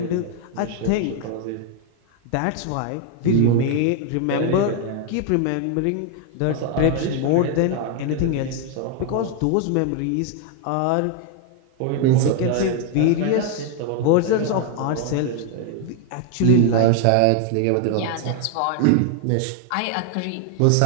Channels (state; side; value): different; both; correlation 0.00